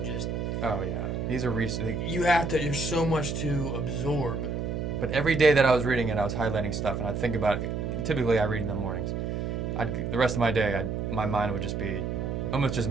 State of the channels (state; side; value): noise; right; hum, 2 dB below the sound